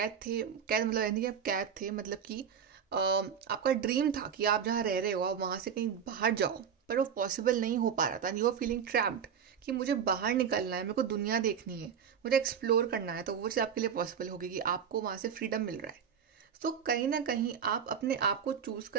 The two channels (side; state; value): left; quieter; 7.6 dB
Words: थे, कैद मतलब यानी कि आप कैद थे, मतलब कि आपका ड्रीम था कि आप जहाँ रह रहे हो आप वहाँ से कहीं बाहर जाओ, पर वो पॉसिबल नहीं हो पा रहा था. यू आर फीलिंग ट्रैप्ड कि मुझे बाहर निकलना है, मेरे को दुनिया देखनी है, मुझे एक्सप्लोर करना है, तो वो चीज़ आपके लिए पॉसिबल होगी कि आपको वहाँ से फ्रीडम मिल रहा है. तो कहीं ना कहीं आप अपने आप को चूज